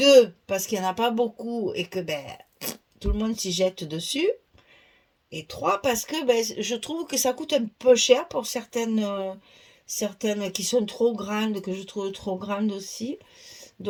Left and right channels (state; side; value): identical; both; correlation 1.00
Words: parce qu'il n'y en a pas beaucoup et que ben, tout le monde s'y jette dessus. Et trois, parce que ben, je trouve que ça coûte un peu cher pour certaines qui sont trop grandes, que je trouve trop grandes aussi.